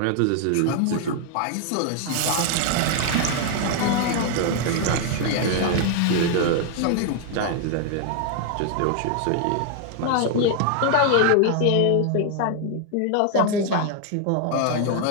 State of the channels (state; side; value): different; both; correlation 0.00